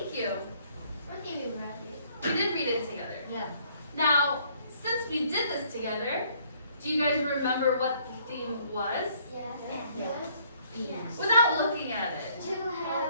you. What did you read it? We did read it together. Yeah. Now, since we did this together, do you guys remember what the theme was? Yes. Without looking at it. To have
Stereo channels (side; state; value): both; inverted; correlation -0.63